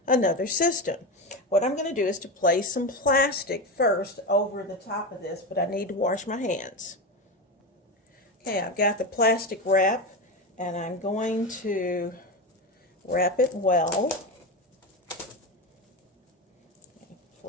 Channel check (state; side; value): normal; both; correlation 0.19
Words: another system. What I'm going to do is to place some plastic first over the top of this, but I need to wash my hands. Okay, I've got the plastic wrap, and I'm going to wrap it well.